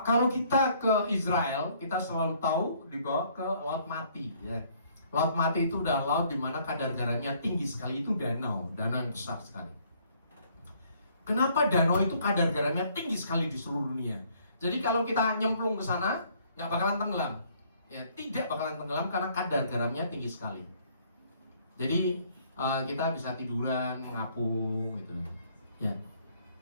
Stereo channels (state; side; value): inverted; both; correlation -0.63